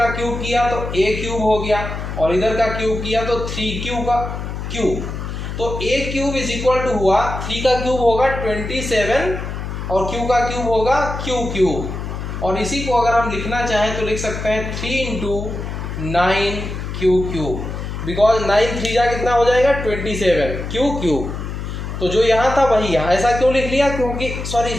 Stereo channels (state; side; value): noise; left; hum, 6 dB below the sound